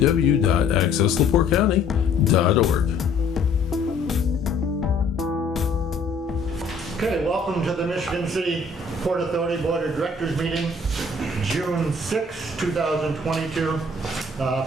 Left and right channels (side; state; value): right; quieter; 3.3 dB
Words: Okay, welcome to the Michigan City Port Authority Board of Directors meeting, June 6, 2022,